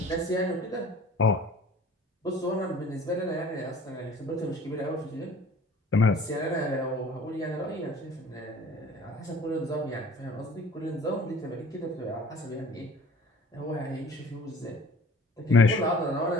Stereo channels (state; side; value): normal; both; correlation 0.47